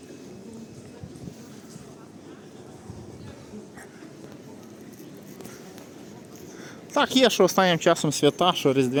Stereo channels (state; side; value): identical; both; correlation 1.00